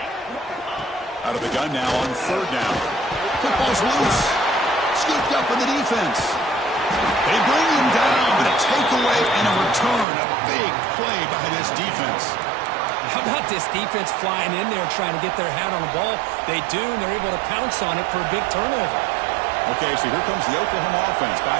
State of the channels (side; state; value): left; drops out; at 10.1 s